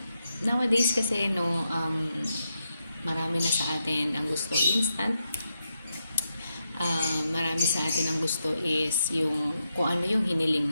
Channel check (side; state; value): both; inverted; correlation -0.85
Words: nowadays kasi marami na sa atin ang gusto instant. Marami sa atin ang gusto is yung kung ano yung